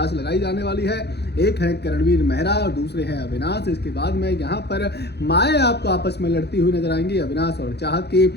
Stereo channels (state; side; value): late; right; 0.48 ms